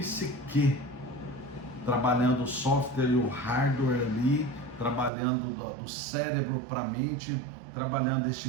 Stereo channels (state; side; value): drops out; left; at 5.1 s